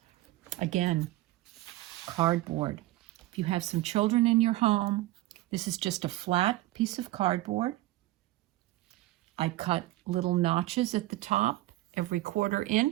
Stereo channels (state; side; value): quieter; left; 17.3 dB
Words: again, cardboard. If you have some children in your home, this is just a flat piece of cardboard. I cut little notches at the top every 1/4